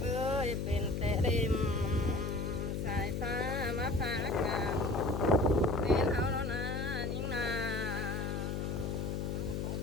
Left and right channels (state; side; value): noise; left; hum, 1 dB below the sound